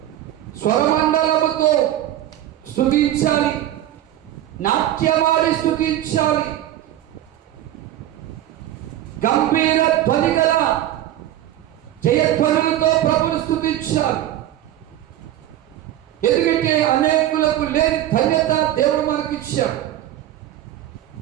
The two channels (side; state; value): left; quieter; 12.9 dB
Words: స్వరమండలముతో స్తుతించాలి, నాట్యమాడి స్తుతించాలి, గంభీర ధ్వని గల జయధ్వనులతో ప్రభుని స్తుతించాలి. ఎందుకంటే అనేకులకు లేని ధన్యత దేవుడు మనకిచ్చాడు.